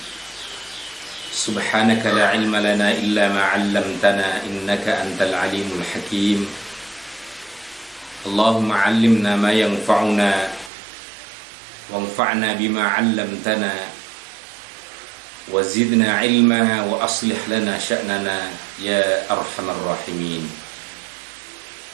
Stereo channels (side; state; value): left; drops out; at 10.7 s